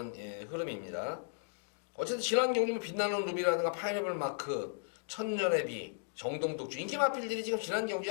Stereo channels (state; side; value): silent; right; digital silence